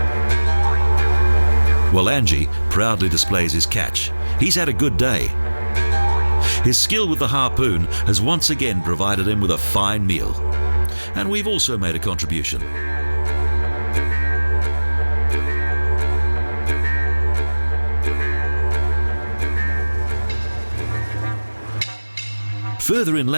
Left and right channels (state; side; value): inverted; both; correlation -1.00